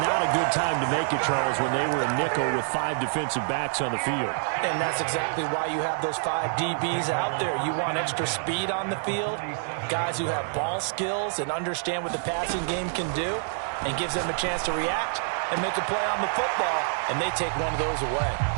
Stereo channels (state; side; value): silent; left; digital silence